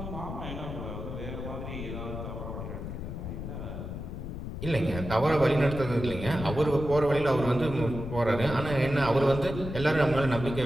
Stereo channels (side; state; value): left; noise; rumble, 7 dB below the sound